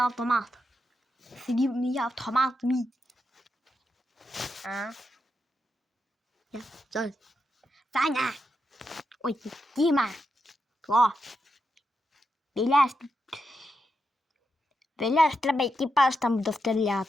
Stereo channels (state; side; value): normal; both; correlation 0.85